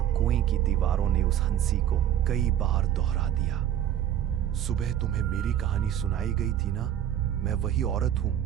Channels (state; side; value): quieter; left; 10.6 dB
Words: कुएं की दीवारों ने उस हंसी को कई बार दोहरा दिया। सुबह तुम्हें मेरी कहानी सुनाई गई थी ना, मैं वही औरत